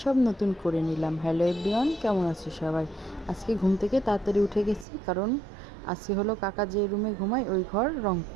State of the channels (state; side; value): drops out; left; at 4.9 s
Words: সব নতুন করে নিলাম। হ্যালো এভরিওয়ান, কেমন আছো সবাই? আজকে ঘুম থেকে তাড়াতাড়ি উঠে গেছি, কারণ আজকে হলো কাকা যে রুমে ঘুমায় ওই ঘর রং